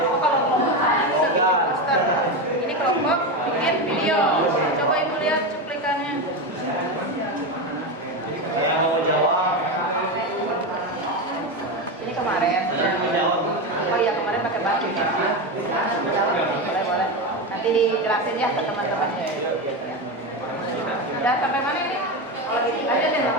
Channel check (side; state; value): both; normal; correlation 0.16